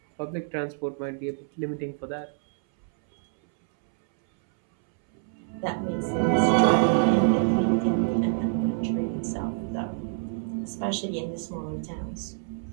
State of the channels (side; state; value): left; silent; 60 dB below the other